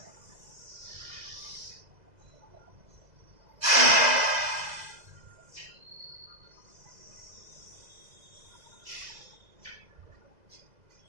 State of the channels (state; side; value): late; left; 2.0 ms